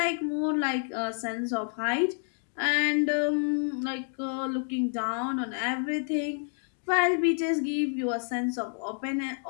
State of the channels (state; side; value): silent; right; 59 dB below the other